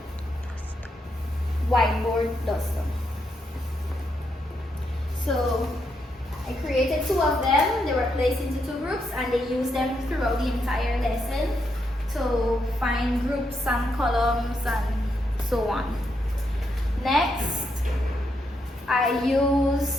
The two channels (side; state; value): both; normal; correlation 0.80